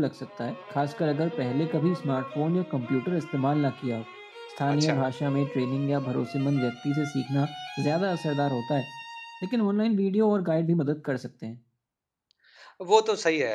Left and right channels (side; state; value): both; identical; correlation 1.00